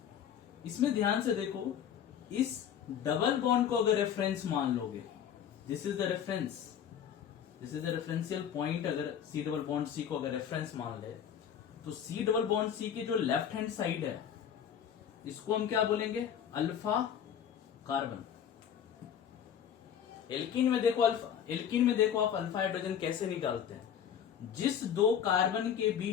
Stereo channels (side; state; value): right; quieter; 8.7 dB